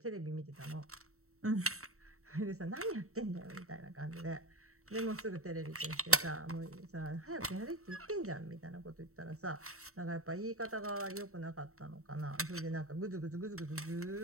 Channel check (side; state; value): left; late; 0.64 ms